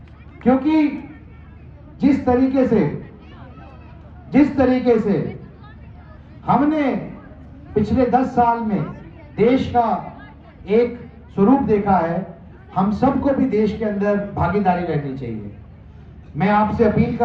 क्योंकि जिस तरीके से हमने पिछले 10 साल में देश का एक स्वरूप देखा है, हम सबको भी देश के अंदर भागीदारी रहनी चाहिए। मैं आपसे अपील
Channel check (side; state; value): both; identical; correlation 1.00